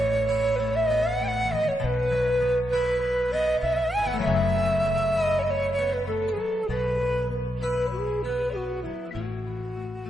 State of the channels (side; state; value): both; normal; correlation 0.84